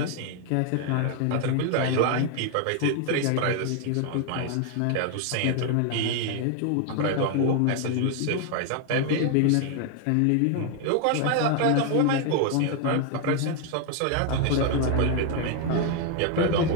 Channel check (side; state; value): both; different; correlation 0.00